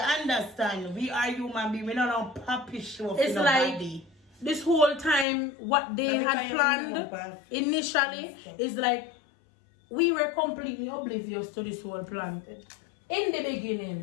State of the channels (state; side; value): drops out; right; at 5.2 s